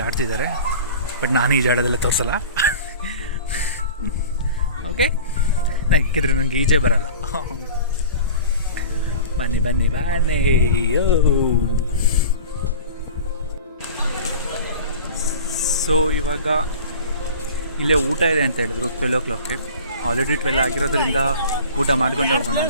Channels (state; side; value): inverted; both; correlation -0.38